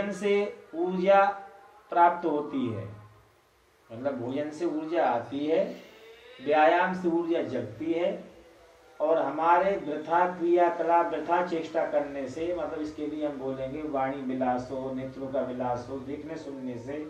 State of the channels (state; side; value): identical; both; correlation 1.00